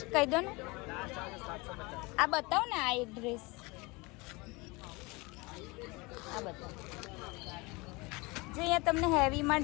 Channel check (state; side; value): quieter; right; 25.3 dB